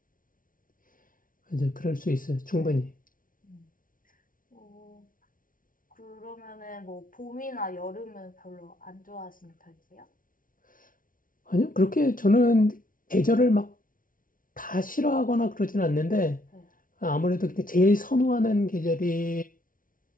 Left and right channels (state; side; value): late; right; 0.39 ms